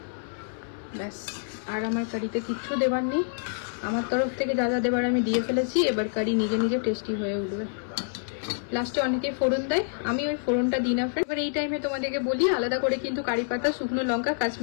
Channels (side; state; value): right; silent; 58 dB below the other